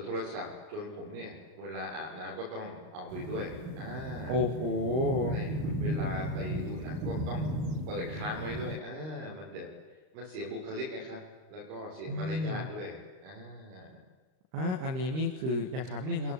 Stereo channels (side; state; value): left; late; 39 ms